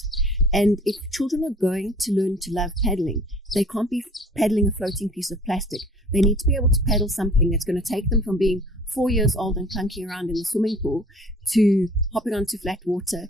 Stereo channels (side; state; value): both; normal; correlation 0.51